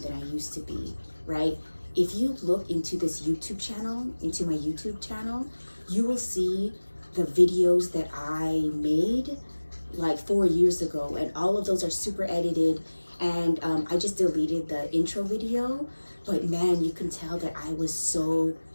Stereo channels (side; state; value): both; inverted; correlation -1.00